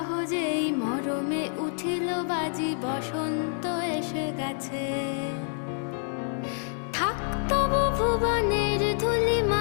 মরমে উঠিল বাজি, বসন্ত এসে গেছে। থাক তবু ভুবনের ধুলি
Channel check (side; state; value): right; silent; 60 dB below the other